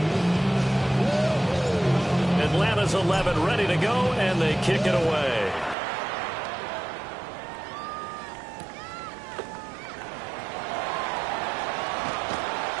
Atlanta's 11 ready to go, and they kick it away.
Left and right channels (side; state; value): left; drops out; at 5.8 s